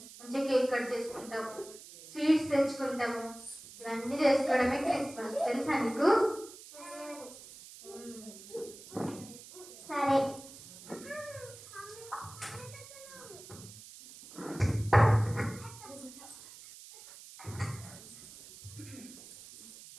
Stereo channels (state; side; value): noise; right; hiss, 17 dB below the sound